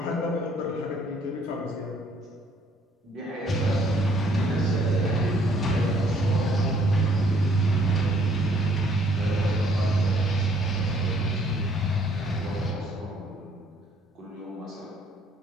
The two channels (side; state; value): both; normal; correlation 0.63